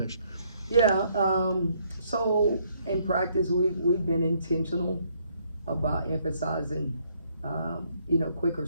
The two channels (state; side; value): inverted; both; correlation -0.69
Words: Yeah. So in practice, we've been intentional about emphasizing, quicker